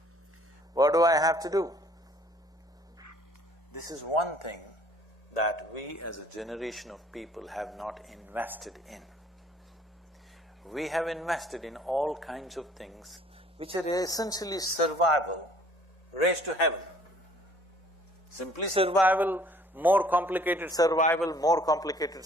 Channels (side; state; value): both; normal; correlation 0.57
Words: What do I have to do? This is one thing that we as a generation of people have not invested in. We have invested in all kinds of things which are essentially survival raised to heaven. Simply survival, more complicated survival,